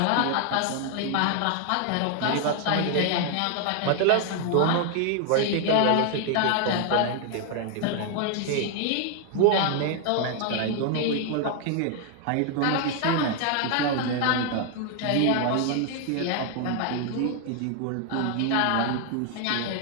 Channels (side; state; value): both; different; correlation 0.00